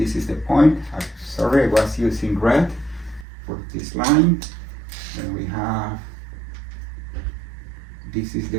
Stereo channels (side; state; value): left; drops out; at 3.2 s